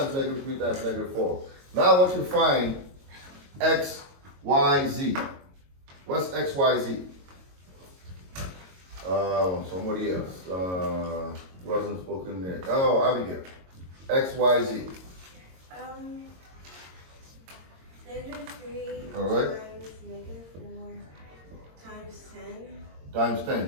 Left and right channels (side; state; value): left; late; 22 ms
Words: negative 3 times negative 4. Now I want you to find x, y, z. What's x, y, z? Somebody else. Wasn't spoken there. Oh, Abigail. X, y, z. Negative 3 All right. times negative 4 times 10. Times